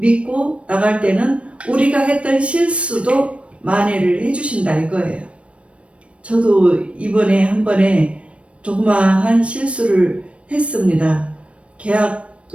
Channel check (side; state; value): left; late; 0.061 ms